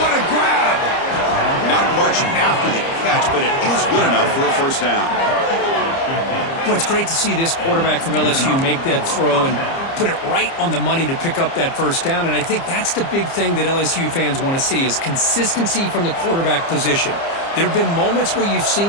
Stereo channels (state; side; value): late; right; 30 ms